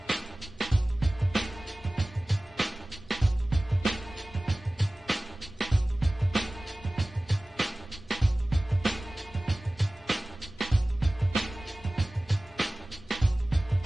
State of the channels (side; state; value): both; normal; correlation 0.98